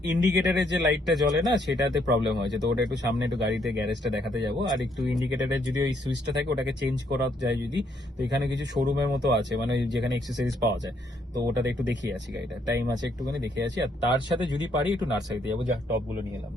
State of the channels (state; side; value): normal; both; correlation 0.71